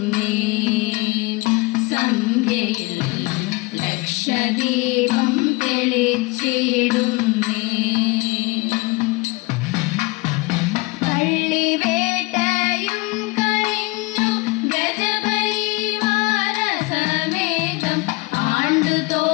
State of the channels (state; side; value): quieter; right; 24.5 dB